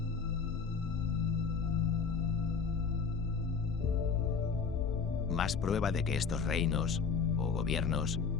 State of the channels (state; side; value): quieter; right; 5.5 dB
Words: Más prueba de que estos reinos o gobiernos